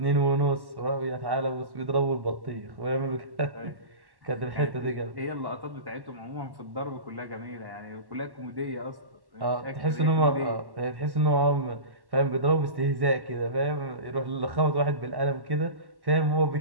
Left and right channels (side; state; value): left; late; 1.1 ms